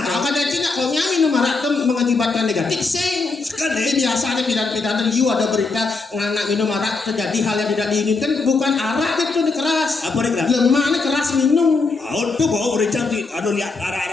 Kalau kadang cina kalau minum harak itu mengakibatkan negatif sing. Ini biasanya pidan-pidan you ada berita anak minum harak terjadi hal yang tidak diinginkan, bukan arak itu nih keras. Apa nih keras? Lemah nih keras minum. Tuh bawa bericang sih. Aduh lihat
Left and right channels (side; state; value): right; quieter; 3.9 dB